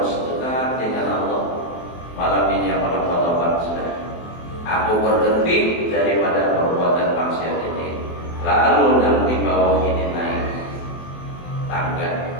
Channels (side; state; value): right; late; 23 ms